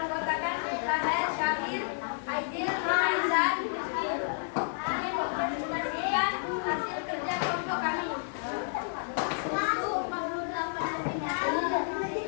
Rahel, Syakir, Aidil, dan Rizky. Kami mempresentasikan hasil kerja kelompok kami. Susu 48 cm,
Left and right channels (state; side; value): silent; right; 57 dB below the other